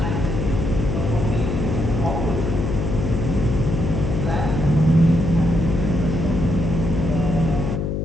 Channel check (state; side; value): noise; left; hum, 1 dB below the sound